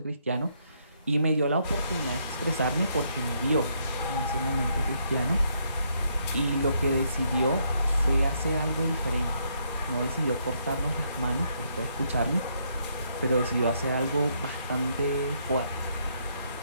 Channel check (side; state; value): both; inverted; correlation -0.74